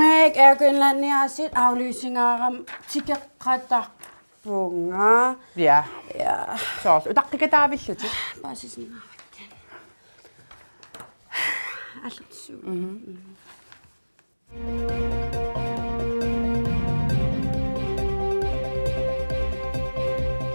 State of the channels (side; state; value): both; inverted; correlation -1.00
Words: erkynlänniasit aflysingaaram tikkeqatarpunga. Ja. Ja. Så utaqqikataavilluti. Basisningaarakkan. Allutsu.